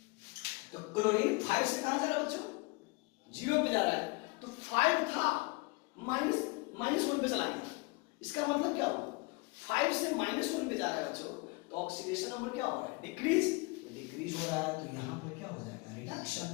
तो क्लोरीन 5 से कहां जा रहा है बच्चों 0 पे जा रहा है, तो 5 था -1 पे चला गया, इसका मतलब क्या हुआ 5 से -1 पे जा रहा है बच्चों, तो ऑक्सीडेशन नंबर क्या हो रहा है डिक्रीज, डिक्रीज हो रहा है, तो यहां पर क्या हो जाएगा रिडक्शन।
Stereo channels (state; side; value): quieter; right; 26.7 dB